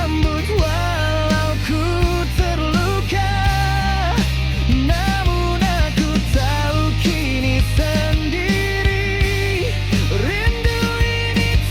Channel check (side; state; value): both; identical; correlation 1.00